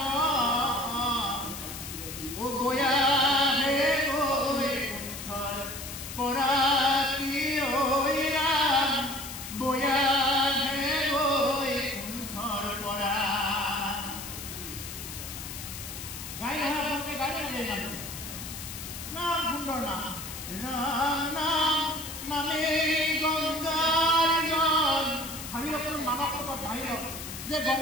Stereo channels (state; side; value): noise; left; hiss, 9 dB below the sound